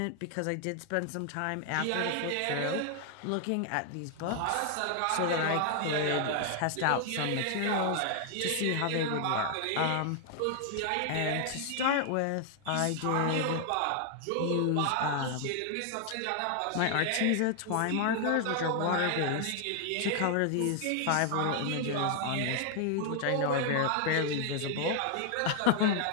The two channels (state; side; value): different; both; correlation 0.00